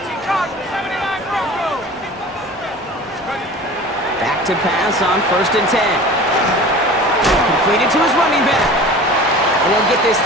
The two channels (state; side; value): normal; both; correlation 0.39